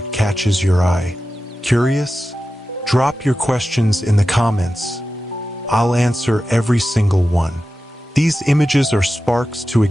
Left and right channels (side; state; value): both; normal; correlation 0.93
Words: catches your eye. Curious? Drop your questions in the comments. I'll answer every single one. These images are sparks to